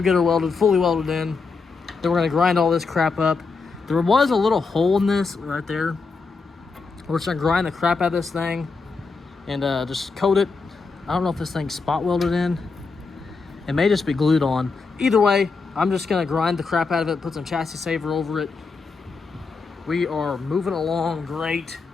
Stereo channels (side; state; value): right; quieter; 4.5 dB